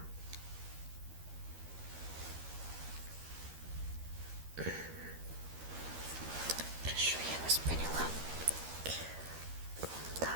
Хорошо, я вас поняла. Да.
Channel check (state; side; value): late; left; 13 ms